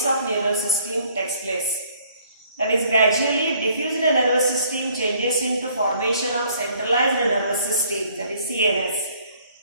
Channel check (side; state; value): both; inverted; correlation -0.61